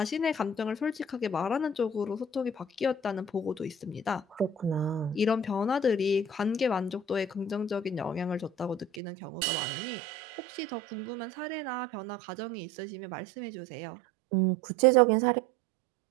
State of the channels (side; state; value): left; drops out; at 9.0 s